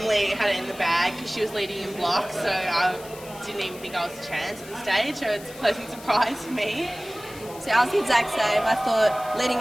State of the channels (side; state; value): left; noise; hiss, 18 dB below the sound